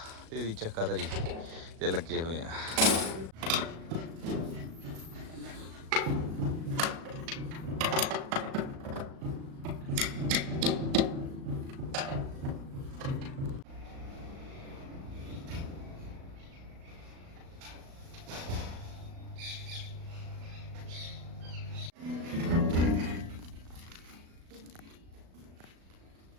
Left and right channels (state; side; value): late; left; 37 ms